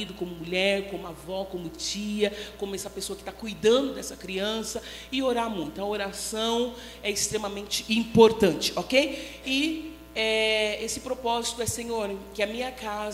como mulher, como avó, como tia, como essa pessoa que está cuidando dessa criança, e orar muito. A oração é extremamente importante, ok? E esse propósito é, Senhor, que a minha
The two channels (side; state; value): both; identical; correlation 1.00